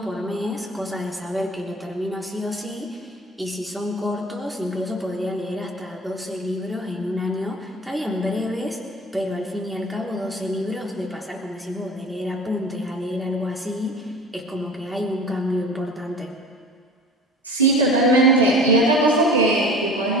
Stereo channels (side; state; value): both; normal; correlation 0.41